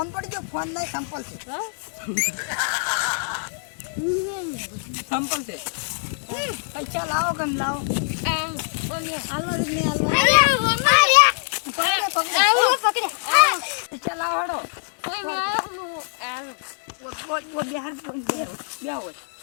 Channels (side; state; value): right; silent; digital silence